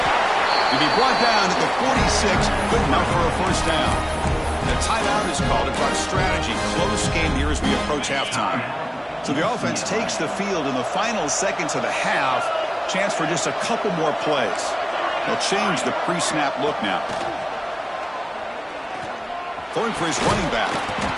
To be brought down at the 46, good enough for a first down. The timeout is called to talk strategy. Close game here as we approach halftime. So the offense takes the field in the final seconds of the half. Chance for just a couple more plays. They'll change the pre-snap look now. Throwing for his running back.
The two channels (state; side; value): identical; both; correlation 1.00